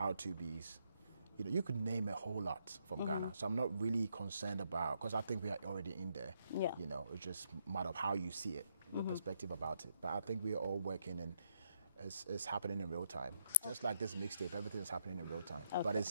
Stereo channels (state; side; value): inverted; both; correlation -0.76